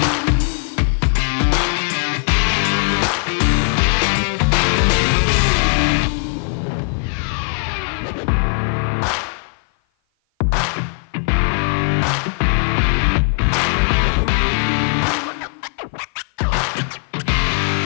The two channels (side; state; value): right; silent; 56 dB below the other